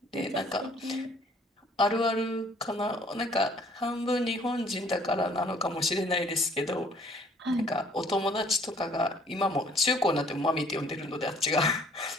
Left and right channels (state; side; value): normal; both; correlation 0.58